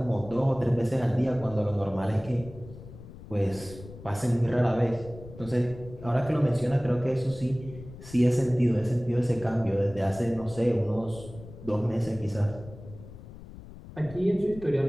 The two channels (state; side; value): noise; left; rumble, 16 dB below the sound